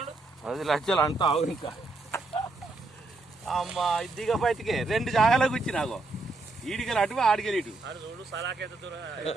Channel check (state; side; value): quieter; left; 3.3 dB